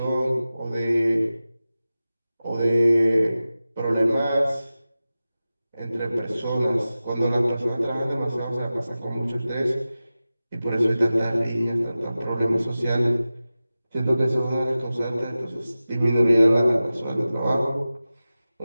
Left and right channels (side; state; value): both; inverted; correlation -0.95